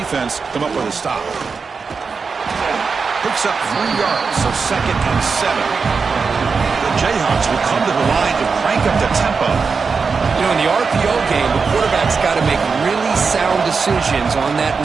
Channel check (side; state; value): left; quieter; 5.0 dB